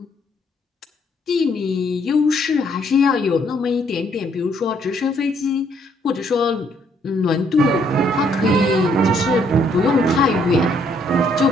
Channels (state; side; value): normal; both; correlation 0.68